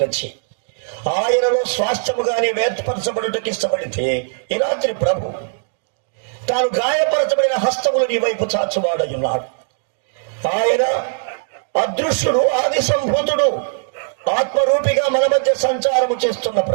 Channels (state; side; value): silent; left; digital silence